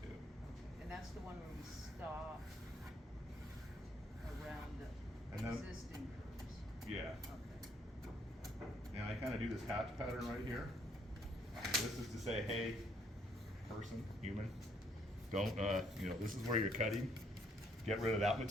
to. Okay. And that's the one where we stop around And the then- existing curves. Yeah. Okay. And I kind of do this hatch pattern right here. This is to say, hey, person, human, don't, this is where you're cutting. Get rid of that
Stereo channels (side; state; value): both; normal; correlation 0.68